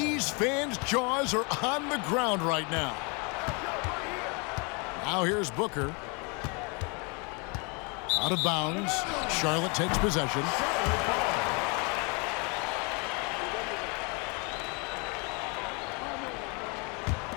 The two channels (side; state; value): right; quieter; 32.3 dB